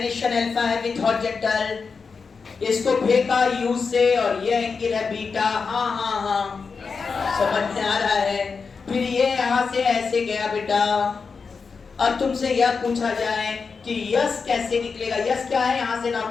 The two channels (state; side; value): quieter; right; 5.1 dB